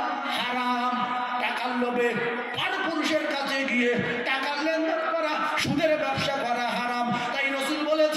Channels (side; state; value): both; identical; correlation 1.00